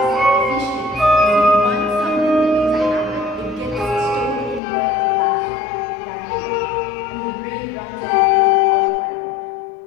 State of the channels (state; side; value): drops out; right; at 4.6 s